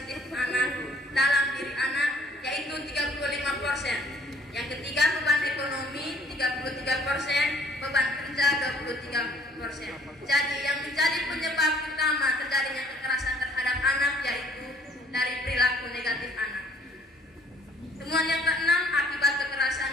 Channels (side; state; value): both; normal; correlation 0.59